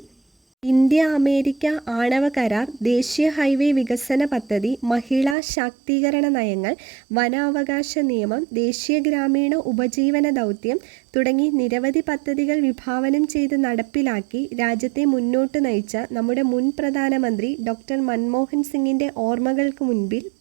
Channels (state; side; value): drops out; left; at 5.4 s